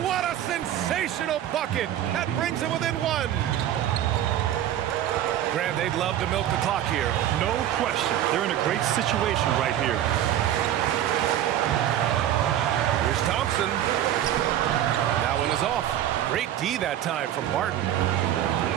what a sensational bucket. That brings him within 1. Grant, they'd love to milk the clock here. No question. They're in a great situation right here. Here's Thompson. That one is off. Great D that time from Barton.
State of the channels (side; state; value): left; quieter; 11.6 dB